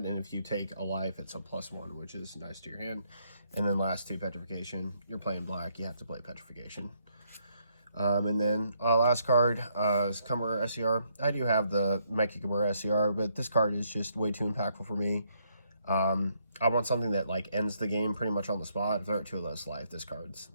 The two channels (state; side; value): inverted; both; correlation -0.73